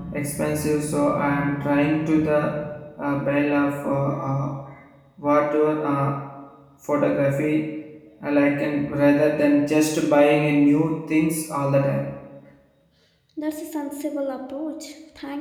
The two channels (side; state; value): both; identical; correlation 1.00